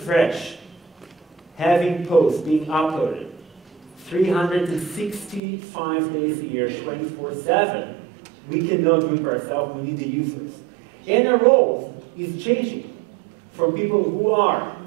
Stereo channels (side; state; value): left; drops out; at 5.4 s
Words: fresh, having posts being uploaded 365 days a year, 24/7, we cannot do it by ourselves, we need the users. And our role is changing from people who are